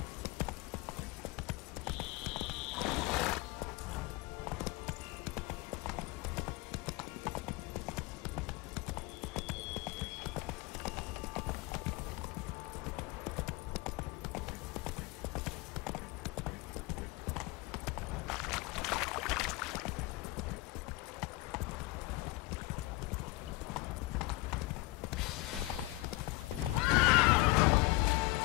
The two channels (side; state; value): right; quieter; 20.9 dB